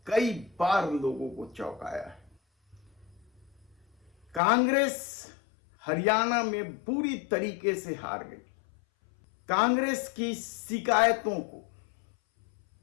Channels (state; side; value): drops out; right; at 4.4 s